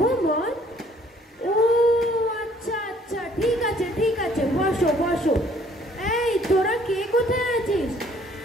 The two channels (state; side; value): normal; both; correlation 0.60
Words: ও আচ্ছা আচ্ছা, ঠিক আছে ঠিক আছে, বসো বসো। এই তোরা কে কোথায় আছিস?